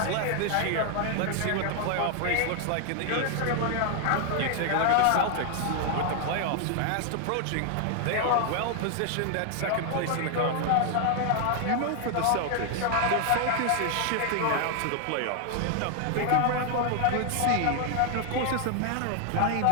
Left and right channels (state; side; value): different; both; correlation 0.00